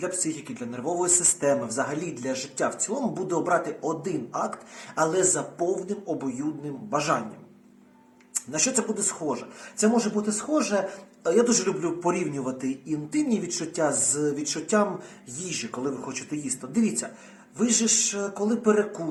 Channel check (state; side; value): identical; both; correlation 1.00